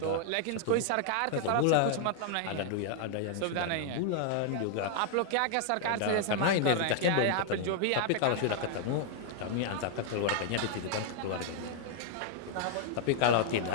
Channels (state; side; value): different; both; correlation 0.00